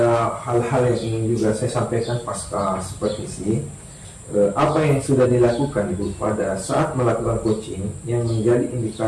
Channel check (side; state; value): both; identical; correlation 1.00